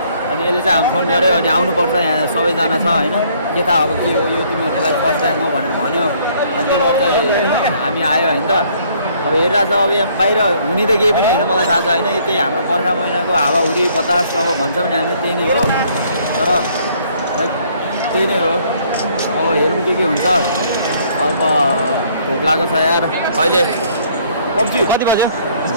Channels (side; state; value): both; inverted; correlation -0.63